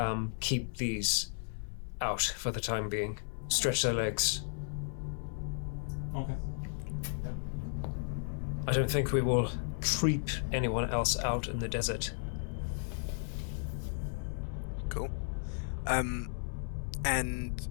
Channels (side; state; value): right; silent; 55 dB below the other